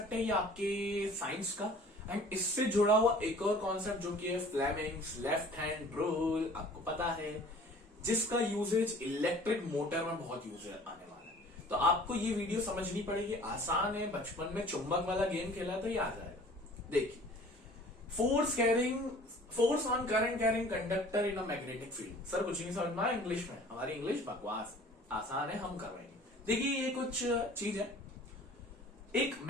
है ये आपके साइंस का, एंड इससे जुड़ा हुआ एक और कॉन्सेप्ट जो कि है फ्लेमिंग्स लेफ्ट हैंड रूल, आपको पता है, जिसका यूजेज इलेक्ट्रिक मोटर में बहुत यूज आने वाला है। तो आपको ये वीडियो समझनी पड़ेगी, आसान है, बचपन में चुंबक वाला गेम खेला तो ये आ जाएगा। देखिए, force on current carrying conductor in a magnetic field. Sir कुछ नहीं समझ में आया इंग्लिश में, हमारी इंग्लिश बकवास, आसान है, हम करवाएंगे। देखिए ये कुछ चीज है, एक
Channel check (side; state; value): both; normal; correlation 0.49